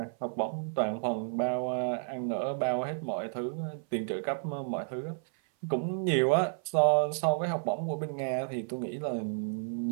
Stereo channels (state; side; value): silent; left; 57 dB below the other